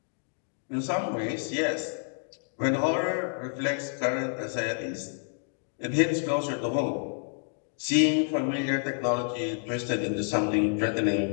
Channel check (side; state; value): right; silent; 59 dB below the other